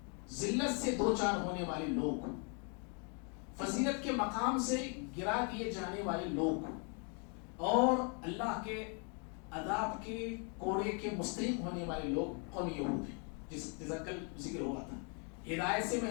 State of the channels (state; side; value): quieter; right; 37.5 dB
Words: ذلت سے دو چار ہونے والے لوگ، فضیلت کے مقام سے گرا دیے جانے والے لوگ، اور اللہ کے عذاب کے کوڑے کے مستحق ہونے والے لوگ قوم یہود ہیں، جس کل ذکر ہوا تھا. ہدایت سے